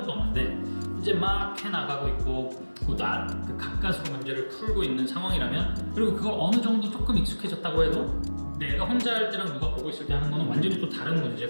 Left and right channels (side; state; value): both; inverted; correlation -1.00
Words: 없는데 이제 막 해나가고 있고 그 가까스로 문제를 풀고 있는 상황이라면, 그리고 그걸 어느 정도 조금 익숙해졌다고 해도 내가 혼자 할 때랑 누가 보고 있을 때 하는 거는 완전히 또 다른